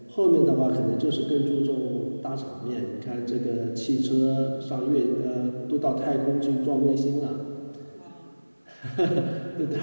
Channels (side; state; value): both; inverted; correlation -1.00